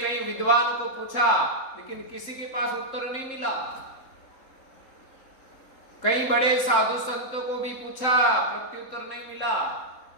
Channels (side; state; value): right; late; 3.7 ms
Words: कई विद्वानों को पूछा, लेकिन किसी के पास उत्तर नहीं मिला। कई बड़े साधु संतों को भी पूछा, प्रत्युत्तर नहीं मिला।